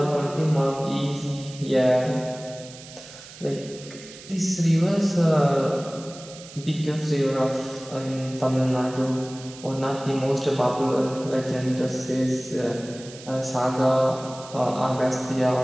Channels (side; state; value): right; noise; hiss, 17 dB below the sound